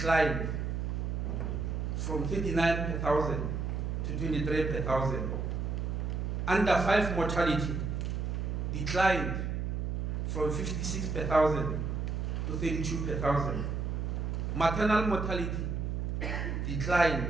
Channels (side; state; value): right; noise; hum, 1 dB below the sound